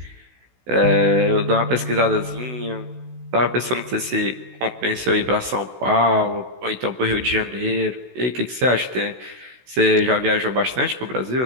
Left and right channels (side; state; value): left; late; 16 ms